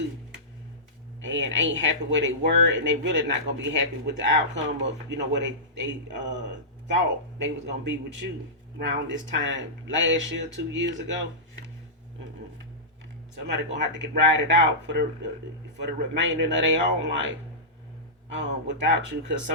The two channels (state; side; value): normal; both; correlation -0.16